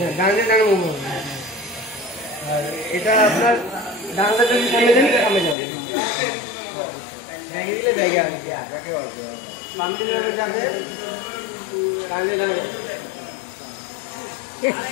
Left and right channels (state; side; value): drops out; right; at 5.6 s